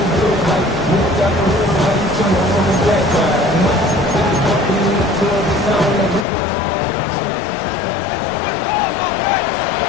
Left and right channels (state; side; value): drops out; right; at 6.2 s